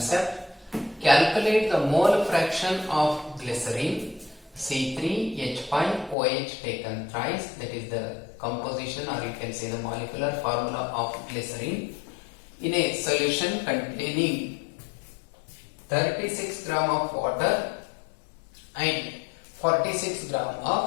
Calculate the mole fraction of glycerine C3H5OH taken thrice, that is the composition or you can say the molecular formula of glycerine in a solution containing 36 gram of water and 46 gram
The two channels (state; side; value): drops out; right; at 6.2 s